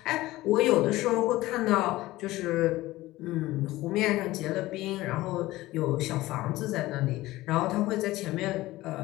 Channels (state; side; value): quieter; right; 17.8 dB